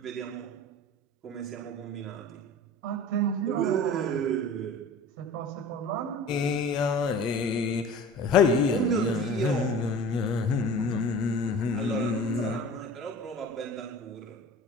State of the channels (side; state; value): both; normal; correlation 0.39